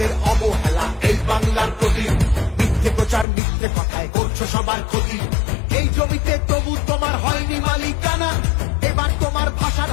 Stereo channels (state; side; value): drops out; right; at 3.2 s